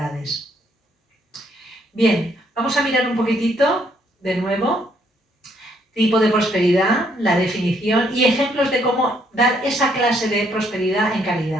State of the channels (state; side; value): normal; both; correlation 0.70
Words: Bien, vamos a mirar un poquitito, de nuevo, tipo de prosperidad, la definición y ejemplos de cómo dar esa clase de prosperidad en